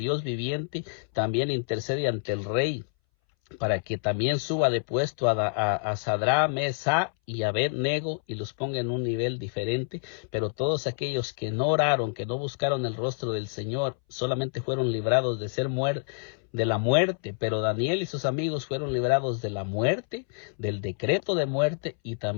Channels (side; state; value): right; silent; 60 dB below the other